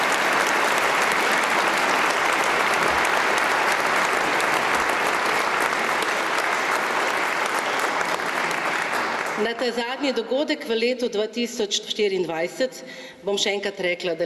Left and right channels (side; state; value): both; identical; correlation 1.00